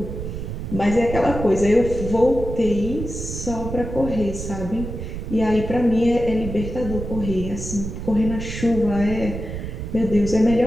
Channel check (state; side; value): noise; right; rumble, 7 dB below the sound